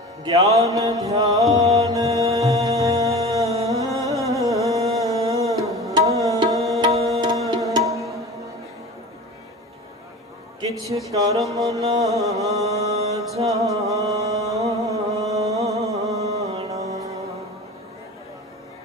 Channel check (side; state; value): both; normal; correlation 0.35